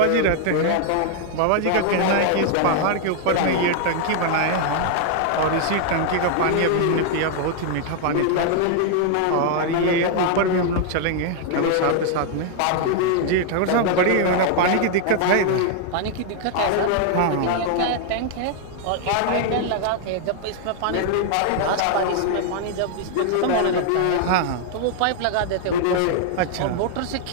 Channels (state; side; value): different; both; correlation 0.00